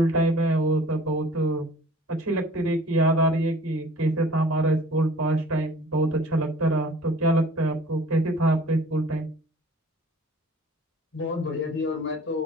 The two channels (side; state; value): both; normal; correlation 0.49